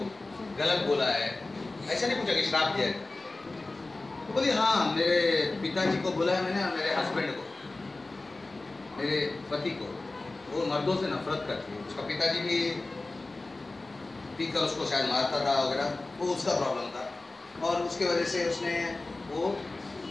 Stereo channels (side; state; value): right; quieter; 3.2 dB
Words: गलत बोला है? ऐसा नहीं पूछा कि श्राप दिया है। तो बोली हाँ, मेरे पिताजी को बोला है मैंने, मेरे हस्बैंड को, मेरे पति को। वो मर्दों से नफरत करती है, उसका पिताजी भी पीकर उसको शायद मारता था वगैरह, वो उसका प्रॉब्लम था और उसके वजह से उसने वो